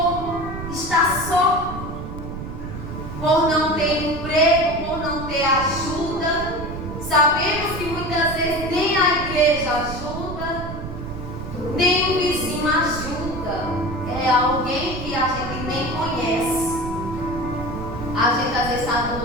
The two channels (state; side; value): noise; right; rumble, 8 dB below the sound